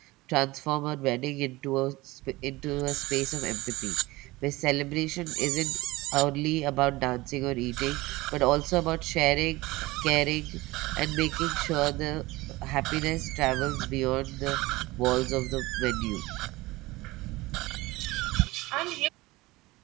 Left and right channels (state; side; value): quieter; left; 20.4 dB